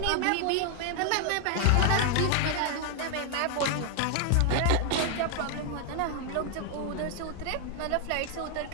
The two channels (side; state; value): both; different; correlation 0.00